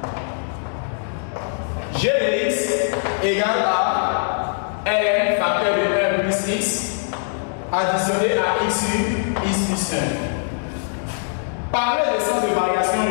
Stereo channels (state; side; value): silent; right; digital silence